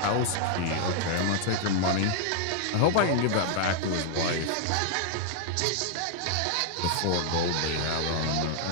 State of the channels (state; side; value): different; both; correlation -0.01